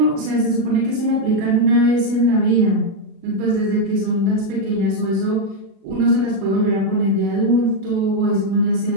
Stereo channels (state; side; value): late; left; 37 ms